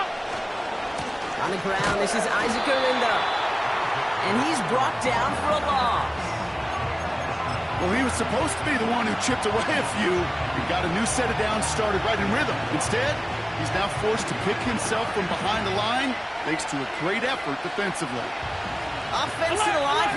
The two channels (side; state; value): both; identical; correlation 1.00